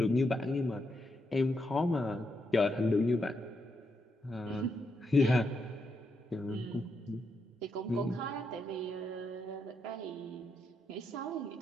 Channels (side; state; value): both; normal; correlation 0.81